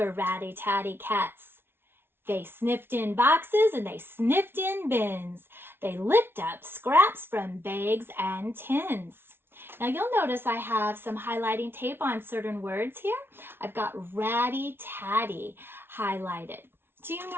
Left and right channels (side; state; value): left; late; 0.11 ms